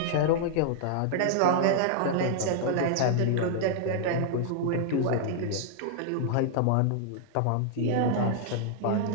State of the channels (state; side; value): different; both; correlation -0.01